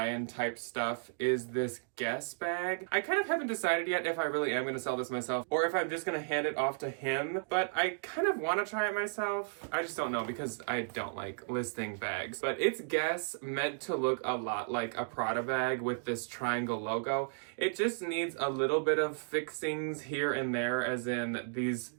type stuff is this Guess bag. I kind of haven't decided yet if I really am going to sell this myself or if I'm just going to hand it off to him, but I kind of want to try it myself. I just don't know because I don't like listing bags. But it's Guess, meant to look a lot like a Prada bag with this triangle logo. It just needs a little bit of fixings here and there, as in these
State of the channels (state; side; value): silent; left; digital silence